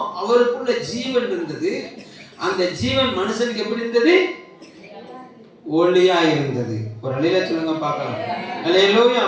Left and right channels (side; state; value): both; identical; correlation 1.00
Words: அவருக்குள்ள ஜீவன் இருந்தது. அந்த ஜீவன் மனுஷனுக்கு எப்படி இருந்தது? ஒளியா இருந்தது. ஒரு அல்லேலூயா சொல்லுங்க பார்க்கலாம். அல்லேலூயா.